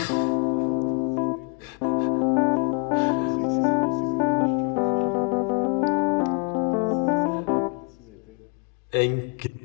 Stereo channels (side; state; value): right; quieter; 35.9 dB